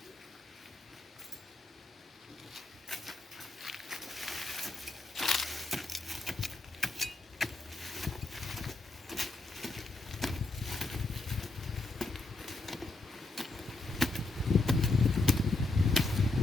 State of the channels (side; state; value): right; quieter; 3.2 dB